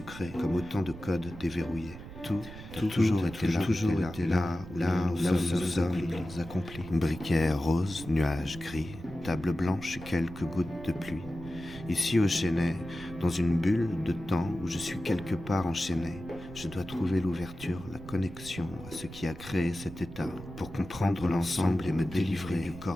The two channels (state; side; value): noise; right; rumble, 14 dB below the sound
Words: comme autant de codes déverrouillés. Tout a toujours été là où nous sommes accomplis. Briquet rose, nuages gris, table blanche et quelques gouttes de pluie. Ici au Chênay, dans une bulle de temps où je suis quelque part enchaîné, je dois trouver l'ouverture, la connexion à ce qui a créé cet état, pour comprendre l'ensemble et me délivrer du